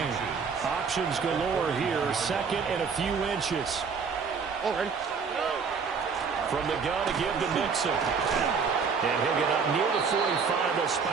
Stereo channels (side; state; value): left; quieter; 5.6 dB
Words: Options galore here, 2nd and a few inches. From the gun to give to Mixon. And he'll get up near the 45. They'll